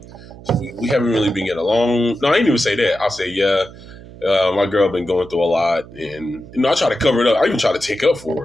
we haven't really been getting along. No, I didn't even say that. I'll say, "Yeah, my girl been going through a lot," and I try to cover it up. I even try to take up for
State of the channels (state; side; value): noise; right; hum, 18 dB below the sound